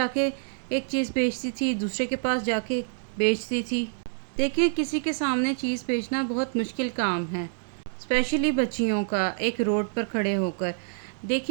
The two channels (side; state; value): left; silent; digital silence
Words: کے ایک چیز بیچتی تھی، دوسرے کے پاس جا کے بیچتی تھی۔ دیکھیں کسی کے سامنے چیز بیچنا بہت مشکل کام ہے، اسپیشلی بچیوں کا، ایک روڈ پر کھڑے ہو کر۔